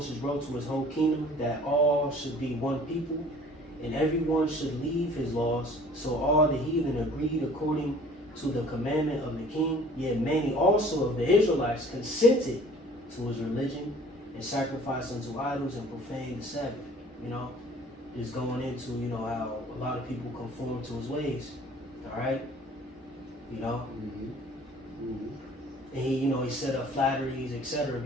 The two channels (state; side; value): normal; both; correlation 0.51